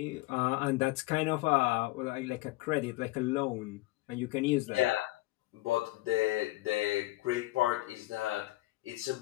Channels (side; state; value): right; quieter; 19.4 dB